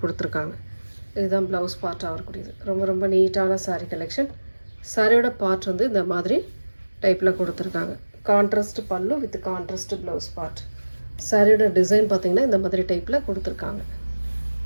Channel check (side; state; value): both; inverted; correlation -1.00